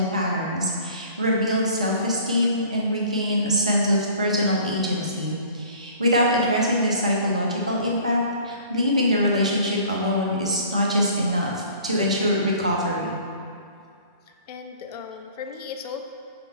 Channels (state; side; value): inverted; both; correlation -0.50